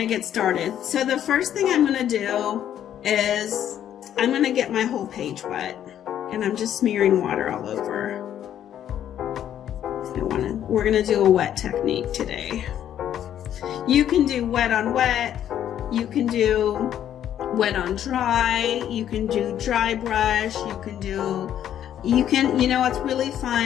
get started. So the first thing I'm going to do is I'm going to get my whole page wet, and I'm just smearing water all over. We're going to do a wet technique today. You can do wet on wet, you can do wet on dry, you can do dry brush, you know what's really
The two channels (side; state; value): right; quieter; 10.5 dB